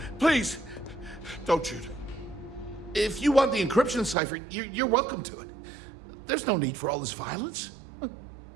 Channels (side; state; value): left; drops out; at 4.2 s